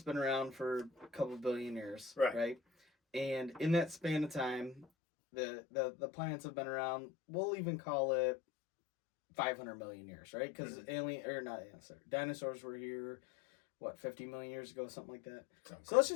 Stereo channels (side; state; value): right; drops out; at 4.9 s